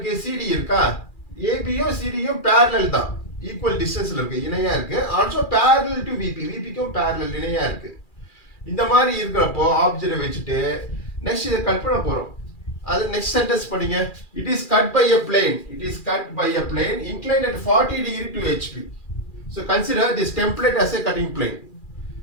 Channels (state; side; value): late; right; 2.4 ms